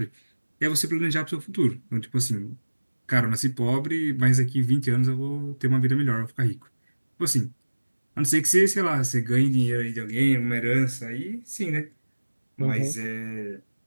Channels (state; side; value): inverted; both; correlation -1.00